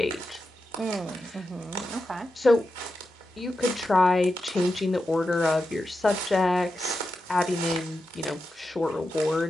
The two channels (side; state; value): both; normal; correlation 0.89